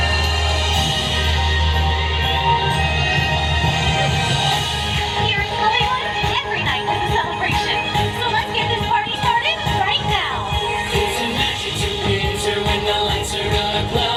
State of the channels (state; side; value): identical; both; correlation 1.00